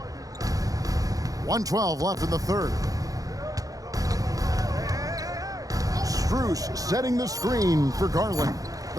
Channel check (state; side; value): late; left; 0.17 ms